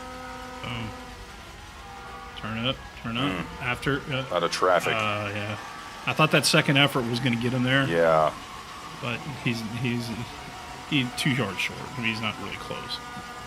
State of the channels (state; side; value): identical; both; correlation 1.00